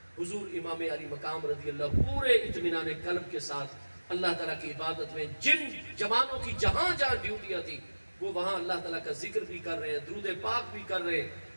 حضور امام علی مقام رضی اللہ پورے اطمینان قلب کے ساتھ اللہ تعالیٰ کی عبادت میں، جن جوانوں کی جہاں جہاں ڈیوٹیاں تھی وہ وہاں اللہ تعالیٰ کا ذکر بھی کر رہے ہیں، درود پاک بھی کر رہے ہیں،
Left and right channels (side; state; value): both; inverted; correlation -1.00